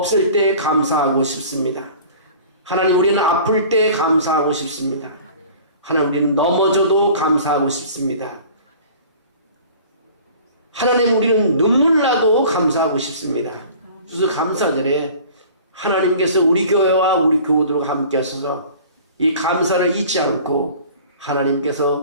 때 감사하고 싶습니다. 하나님, 우리는 아플 때 감사하고 싶습니다. 하나님, 우리는 넘어져도 감사하고 싶습니다. 하나님, 우리는 눈물 나도 감사하고 싶습니다. 그래서 감사절에 하나님께서 우리 교회와 우리 교우들과 함께 하셔서 이 감사를 잊지 않고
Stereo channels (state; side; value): inverted; both; correlation -0.45